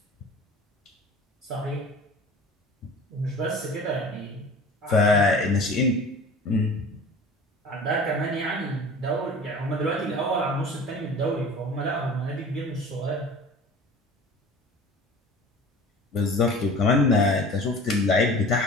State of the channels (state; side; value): normal; both; correlation 0.41